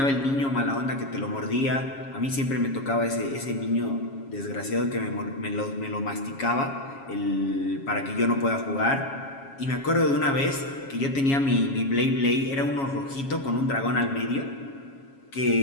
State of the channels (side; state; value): right; late; 7.3 ms